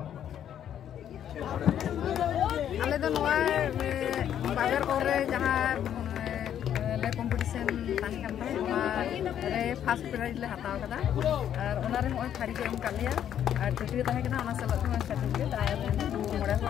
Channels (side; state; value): right; quieter; 9.9 dB